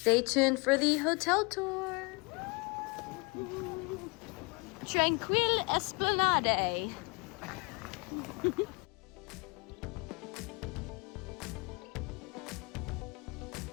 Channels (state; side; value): quieter; right; 28.5 dB